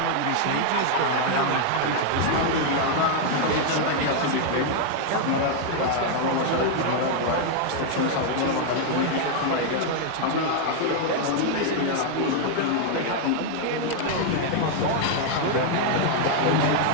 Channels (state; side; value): different; both; correlation 0.00